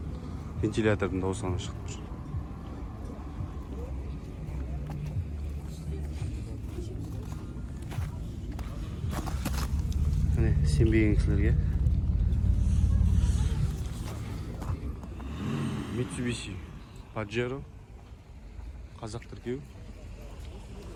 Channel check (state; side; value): identical; both; correlation 1.00